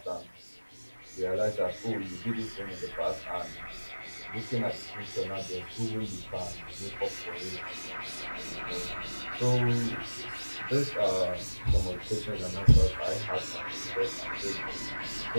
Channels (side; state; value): both; inverted; correlation -1.00